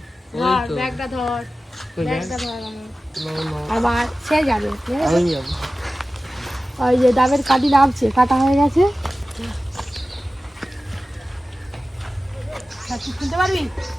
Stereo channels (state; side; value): normal; both; correlation 0.95